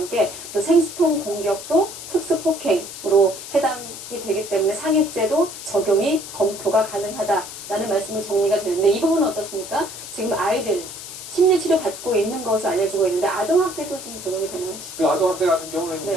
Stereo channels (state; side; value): noise; left; hiss, 11 dB below the sound